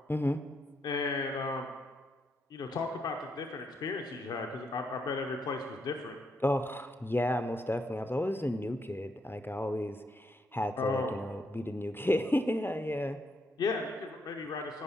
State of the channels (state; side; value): normal; both; correlation 0.77